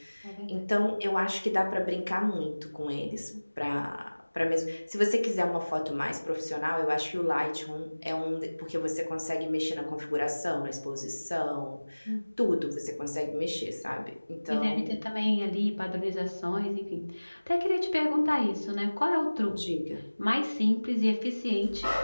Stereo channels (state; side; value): inverted; both; correlation -1.00